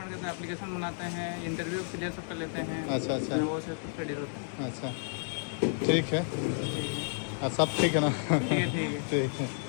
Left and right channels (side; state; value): right; silent; 57 dB below the other